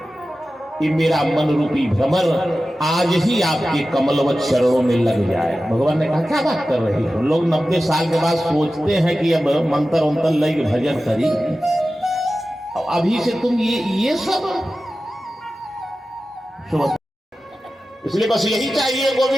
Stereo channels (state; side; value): normal; both; correlation 0.94